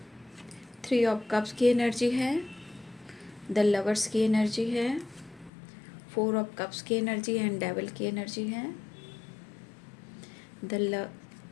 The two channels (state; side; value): drops out; right; at 5.5 s